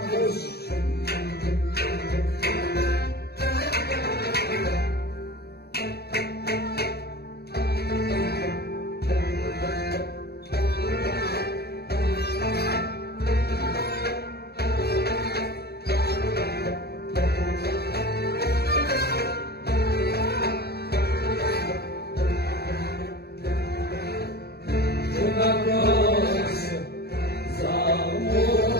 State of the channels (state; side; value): late; right; 0.47 ms